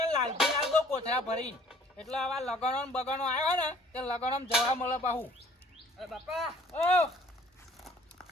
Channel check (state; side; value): normal; both; correlation 0.56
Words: લાલજી લાલ દો કોથળા ભરીને એટલે આવા લગણો ને બગણો આવ્યો ને તે લગણો જવા મળે પાહુ અરે બાપા ઓ